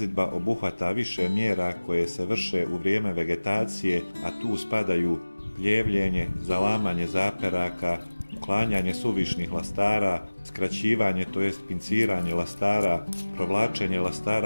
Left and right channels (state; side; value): inverted; both; correlation -1.00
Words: obuhvata više mjera koje se vrše u vrijeme vegetacije, a tu spadaju pljevljenje, zalamanje zaperaka, uklanjanje suvišnih lastara, skraćivanje tj. pinciranje lastara, provlačenje